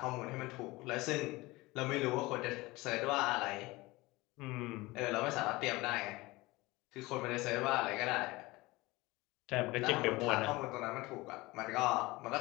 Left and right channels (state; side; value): quieter; right; 21.4 dB